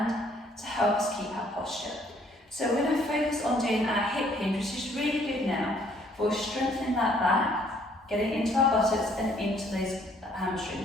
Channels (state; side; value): normal; both; correlation 0.63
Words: to help us keep our posture. So we're going to focus on doing our hip hinge, which is really good now for strengthening that back, getting into our buttocks and into those